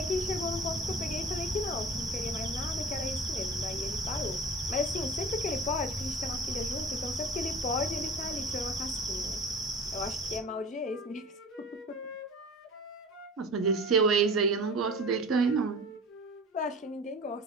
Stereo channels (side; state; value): both; normal; correlation 0.39